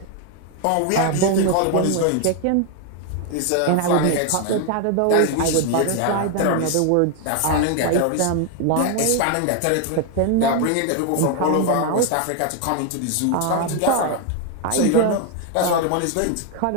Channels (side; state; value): both; different; correlation 0.01